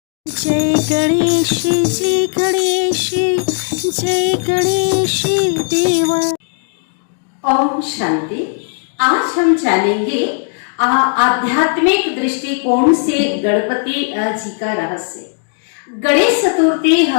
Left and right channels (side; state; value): right; silent; 64 dB below the other